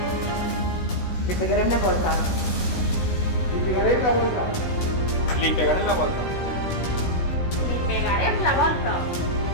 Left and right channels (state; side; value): late; right; 16 ms